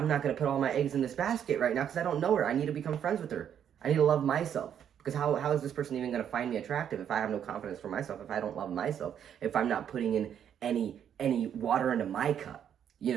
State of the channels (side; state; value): left; quieter; 9.0 dB